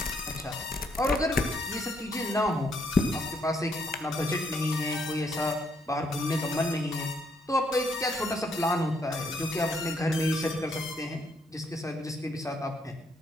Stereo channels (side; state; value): both; normal; correlation 0.73